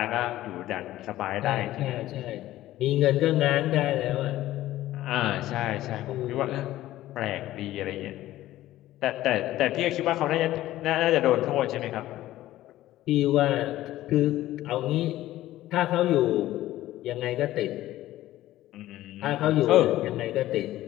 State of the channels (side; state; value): right; quieter; 14.9 dB